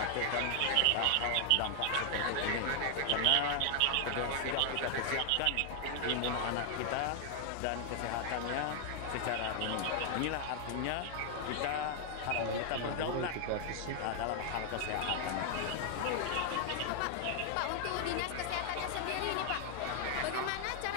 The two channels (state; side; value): different; both; correlation 0.00